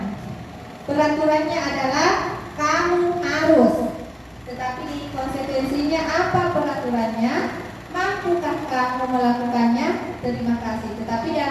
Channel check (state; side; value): identical; both; correlation 1.00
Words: Peraturannya adalah kamu harus, tetapi di konsekuensinya apa peraturannya? Mampukah kamu melakukannya? Terima kasih. Tetapi